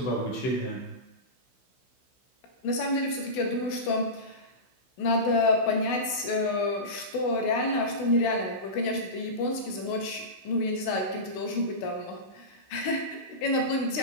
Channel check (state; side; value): late; right; 16 ms